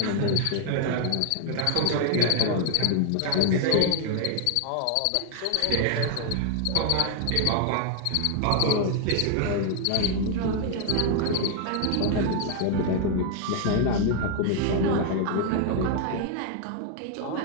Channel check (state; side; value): different; both; correlation 0.01